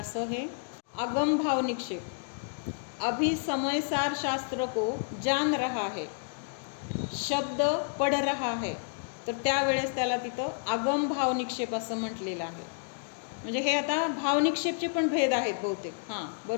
हे आगम भाव निक्षेप. अभी समय सार शास्त्र को जान रहा है, शब्द पढ़ रहा है, तर त्यावेळेस त्याला तिथं आगम भाव निक्षेप असं म्हटलेलं आहे. म्हणजे हे आता भावनिक्षेपचे पण भेद आहेत बहुतेक. हां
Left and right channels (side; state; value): right; silent; digital silence